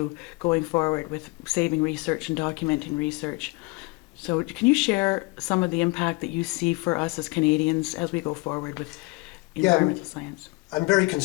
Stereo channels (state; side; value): quieter; right; 26.0 dB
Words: going forward with saving research and documenting research. So can you share some of the impact that you see for us as Canadians as we go forward with environmental science? I'm very